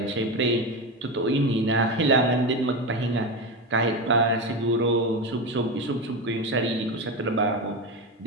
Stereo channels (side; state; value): both; normal; correlation 0.18